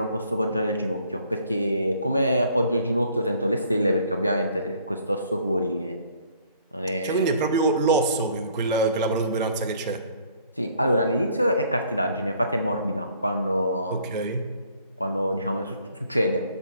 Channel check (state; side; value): inverted; both; correlation -0.60